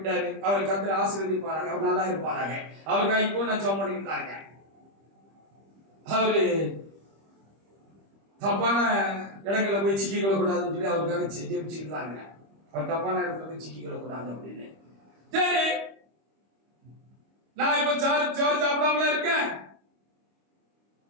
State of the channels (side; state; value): left; late; 25 ms